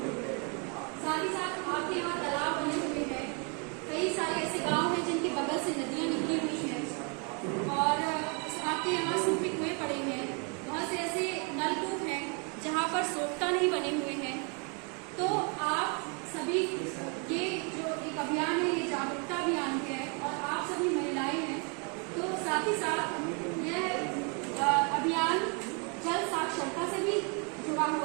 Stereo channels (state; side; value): quieter; left; 35.5 dB